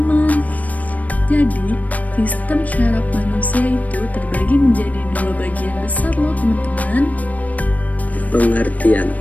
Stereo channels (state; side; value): late; right; 0.072 ms